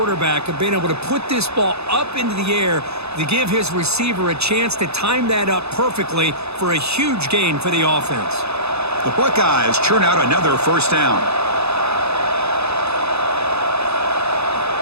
of being able to put this ball up into the air to give his receiver a chance to time that up perfectly for a huge gain for the offense. The Buckeyes churn out another first down.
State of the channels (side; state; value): left; late; 0.79 ms